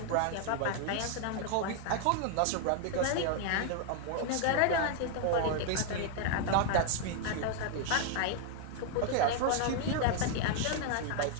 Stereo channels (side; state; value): both; different; correlation 0.00